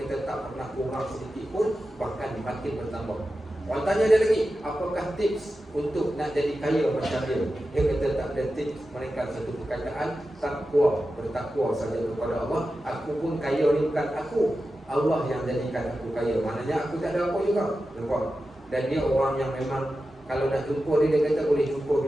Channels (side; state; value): both; normal; correlation 0.92